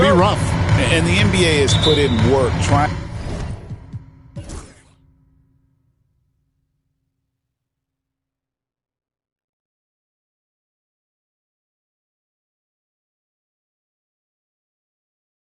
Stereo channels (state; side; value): identical; both; correlation 1.00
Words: rough. And the NBA has put in work trying.